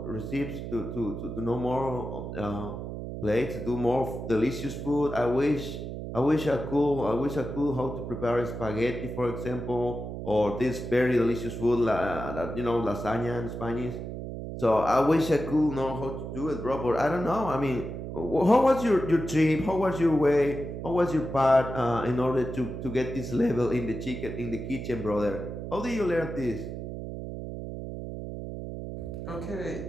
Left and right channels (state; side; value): noise; right; hum, 7 dB below the sound